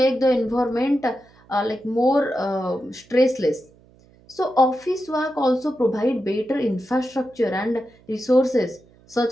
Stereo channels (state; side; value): noise; right; hum, 28 dB below the sound